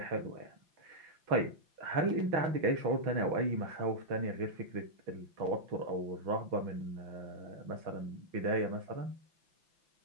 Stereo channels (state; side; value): late; left; 5.9 ms